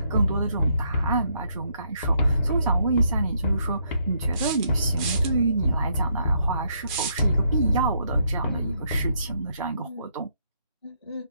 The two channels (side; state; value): both; inverted; correlation -0.73